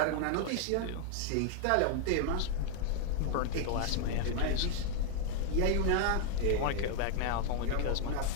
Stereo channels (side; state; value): both; different; correlation 0.00